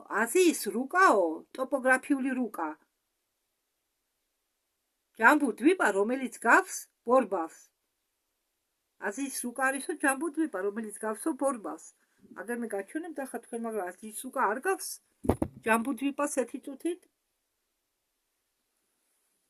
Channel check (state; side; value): identical; both; correlation 1.00